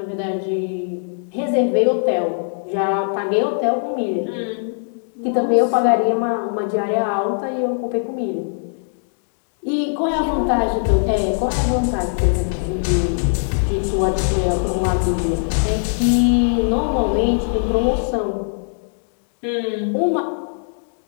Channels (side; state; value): right; silent; digital silence